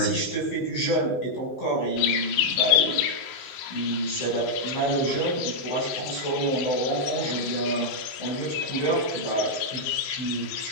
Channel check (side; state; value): right; late; 17 ms